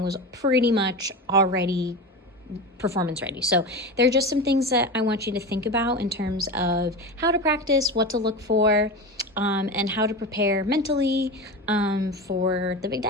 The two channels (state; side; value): normal; both; correlation 0.25